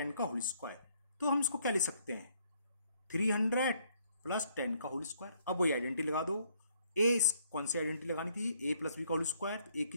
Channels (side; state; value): both; inverted; correlation -0.67